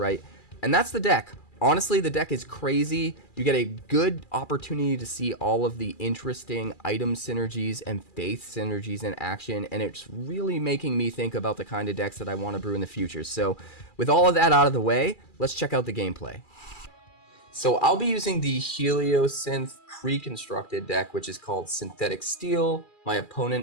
And that's the deck. Honestly, the deck is crazy. You get a good opportunity to see all of the interesting item synergies and faith synergies in action, and it's really making me think about the kind of decks that I want to brew in the future. So with all of that out of the way, let's check out the gameplay. So I'll be using the Heliosynth pre-constructed deck, which is called Synthetic Steel. My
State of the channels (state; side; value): late; right; 2.4 ms